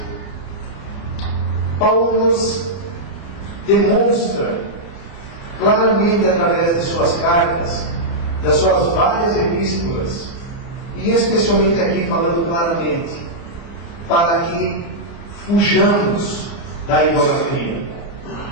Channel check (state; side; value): late; right; 29 ms